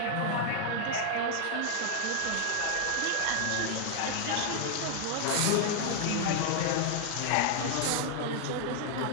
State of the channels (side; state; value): both; different; correlation 0.00